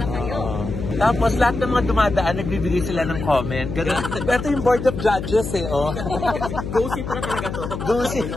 kayo. Tapos lahat ng mga dumadaan, nagbibigay sila ng comment. Ganun. Ito yung board of judges eh, oh. Go-see pala talaga to.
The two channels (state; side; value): noise; left; hum, 6 dB below the sound